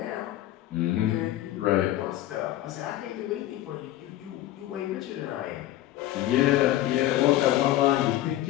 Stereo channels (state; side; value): quieter; right; 14.4 dB